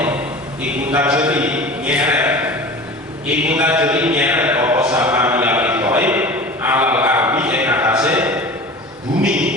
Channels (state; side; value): normal; both; correlation 0.36